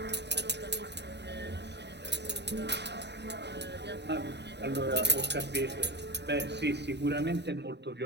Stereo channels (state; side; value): late; left; 0.50 ms